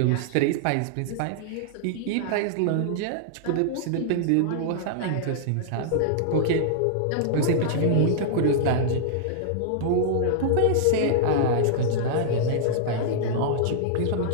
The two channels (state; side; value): different; both; correlation -0.01